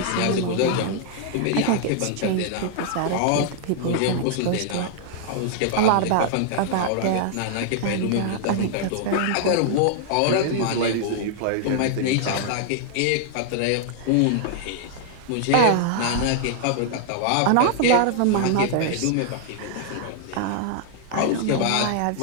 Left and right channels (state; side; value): different; both; correlation 0.00